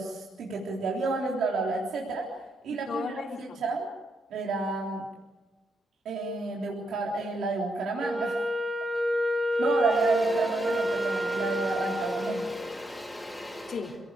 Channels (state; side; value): normal; both; correlation 0.79